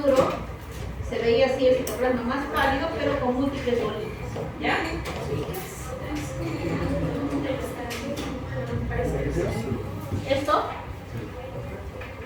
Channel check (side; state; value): both; identical; correlation 1.00